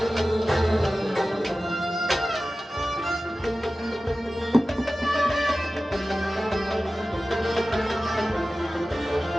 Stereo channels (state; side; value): normal; both; correlation 0.96